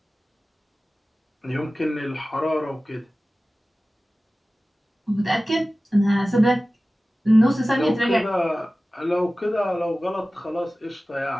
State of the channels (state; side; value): normal; both; correlation 0.96